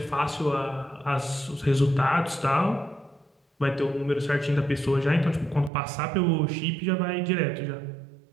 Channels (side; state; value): left; drops out; at 5.7 s